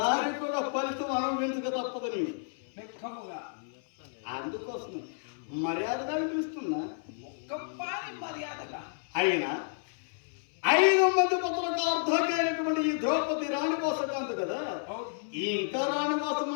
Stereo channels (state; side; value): silent; right; 57 dB below the other